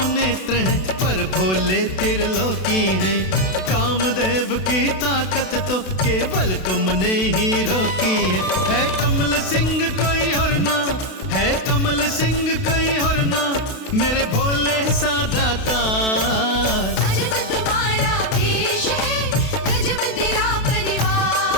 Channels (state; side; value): late; right; 32 ms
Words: नेत्र हैं, पर भोले त्रिलोकी हैं। कामदेव की ताकत तो केवल तुमने ही रोकी है कमल सिंह कोई और ना, है कमल सिंह कोई और ना, मेरे भोले सा दातार। अजब तुम्हारा भेष है, गजब तेरा